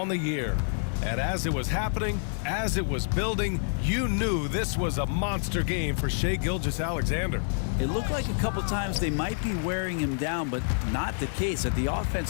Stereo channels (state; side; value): silent; right; digital silence